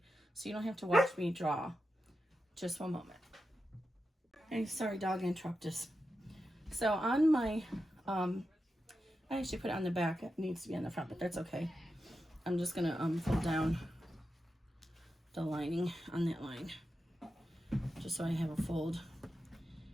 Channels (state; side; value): normal; both; correlation 0.89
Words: so you don't have to watch me draw. Just one moment. Hey, sorry, dog interrupted us. So on my, I actually put it on the back. It needs to be on the front, but that's okay. I'm just gonna fold down the lining on that line, just so I have a fold.